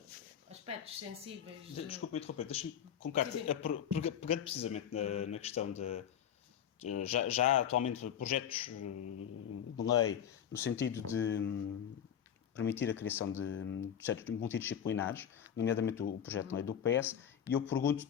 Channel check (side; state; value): right; quieter; 9.1 dB